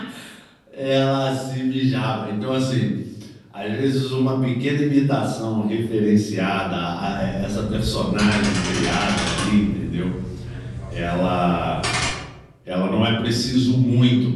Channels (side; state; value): both; identical; correlation 1.00